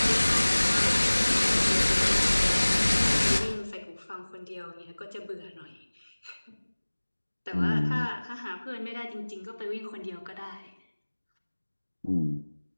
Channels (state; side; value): inverted; both; correlation -1.00